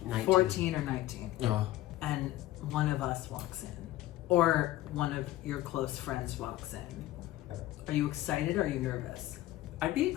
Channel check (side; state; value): right; quieter; 15.5 dB